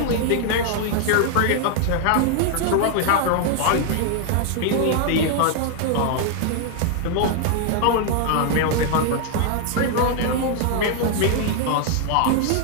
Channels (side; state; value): both; different; correlation 0.00